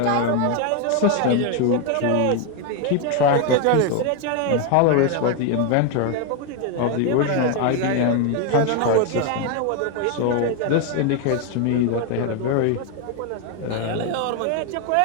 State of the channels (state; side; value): different; both; correlation 0.01